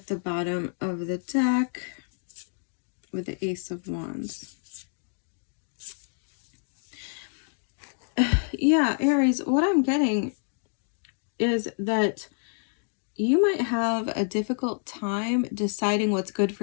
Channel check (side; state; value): right; silent; 56 dB below the other